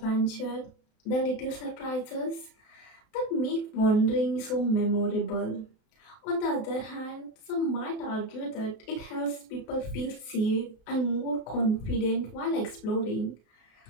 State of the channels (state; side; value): late; right; 33 ms